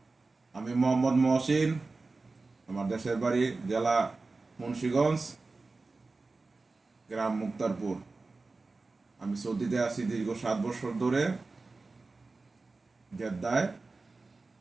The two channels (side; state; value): left; quieter; 3.7 dB